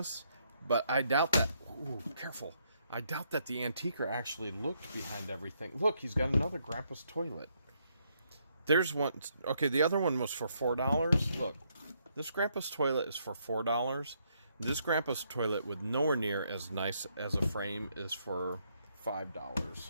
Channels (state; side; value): inverted; both; correlation -0.74